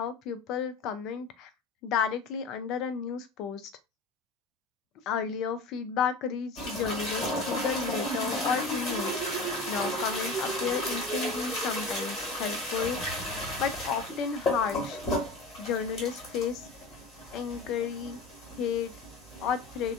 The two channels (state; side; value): quieter; right; 3.6 dB